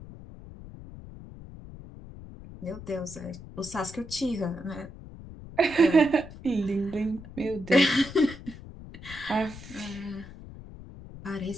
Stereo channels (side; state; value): left; noise; rumble, 15 dB below the sound